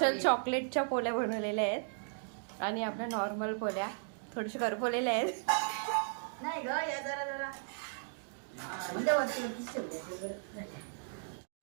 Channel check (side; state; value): left; silent; digital silence